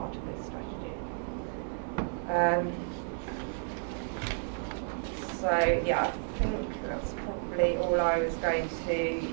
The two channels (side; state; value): left; silent; 56 dB below the other